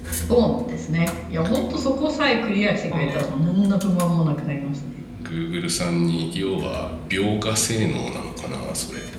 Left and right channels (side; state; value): both; identical; correlation 1.00